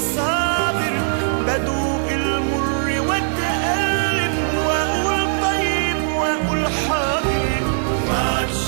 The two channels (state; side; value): silent; left; digital silence